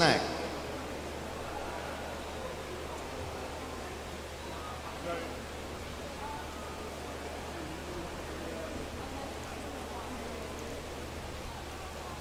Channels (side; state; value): both; identical; correlation 1.00